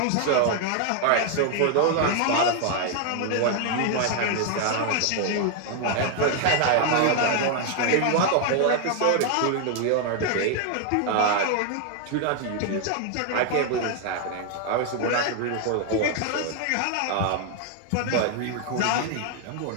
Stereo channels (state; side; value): different; both; correlation 0.01